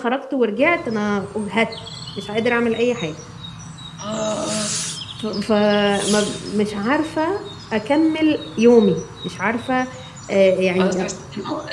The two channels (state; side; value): identical; both; correlation 1.00